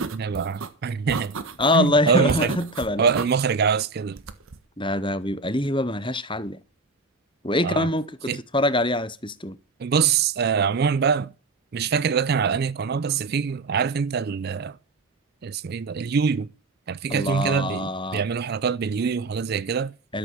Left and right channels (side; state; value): left; quieter; 3.2 dB